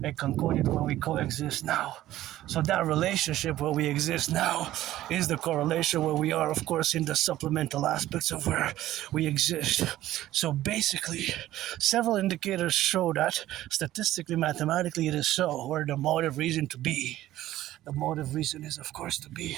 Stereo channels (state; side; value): quieter; left; 14.4 dB